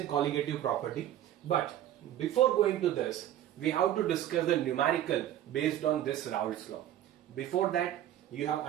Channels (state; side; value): quieter; left; 12.0 dB